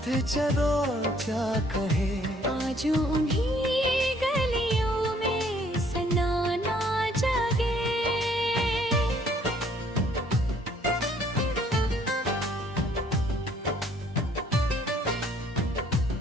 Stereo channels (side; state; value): both; normal; correlation 0.62